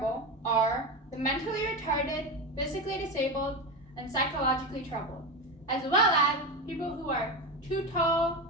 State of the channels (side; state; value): both; normal; correlation 0.19